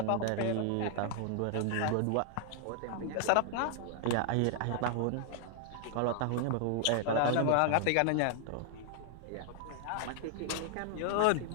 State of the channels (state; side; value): different; both; correlation 0.00